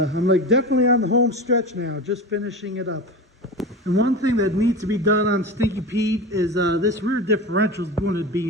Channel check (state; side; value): normal; both; correlation 0.27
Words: like definitely on the home stretch now, just finishing it up. And one thing that needs to be done on Stinky Pete is this rear differential is going to